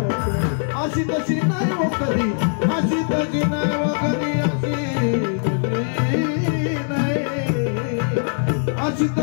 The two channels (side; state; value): right; silent; 65 dB below the other